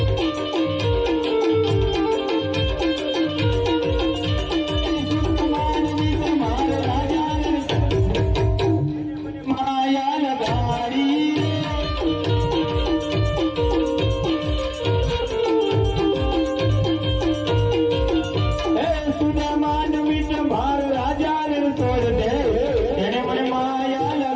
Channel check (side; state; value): both; identical; correlation 1.00